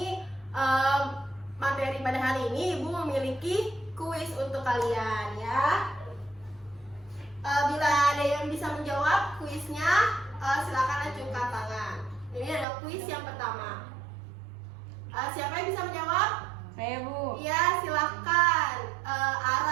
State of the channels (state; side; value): drops out; left; at 12.7 s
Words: materi pada hari ini, Ibu memiliki kuis untuk kalian ya. Bila ada yang bisa menjawab kuisnya, silakan acungkan tangan. Ini ada kuis yang pertama. Siapa yang bisa menjawab? Saya, Bu. Iya, silakan.